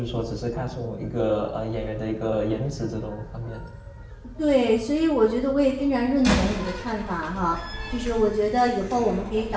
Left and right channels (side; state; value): both; identical; correlation 1.00